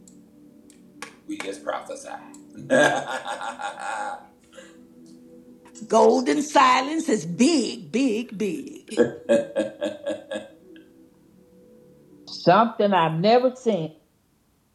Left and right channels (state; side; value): identical; both; correlation 1.00